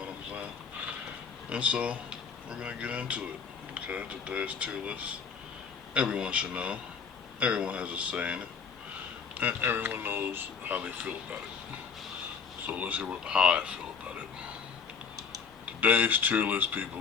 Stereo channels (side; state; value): right; quieter; 6.0 dB